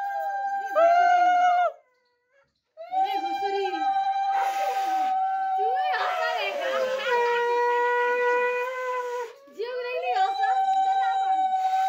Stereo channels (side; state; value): both; identical; correlation 1.00